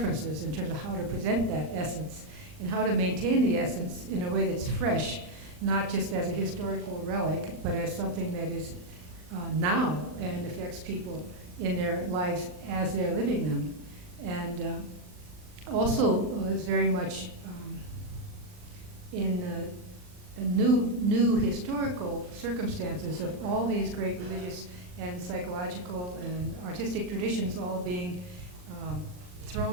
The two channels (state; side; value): late; left; 39 ms